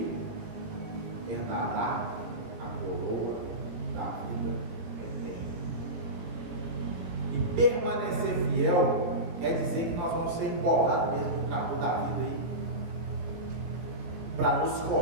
herdará a coroa da vida eterna. E permanecer fiel quer dizer que nós vamos ser embolados mesmo no trabalho da vida aí, para nos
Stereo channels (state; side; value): late; left; 18 ms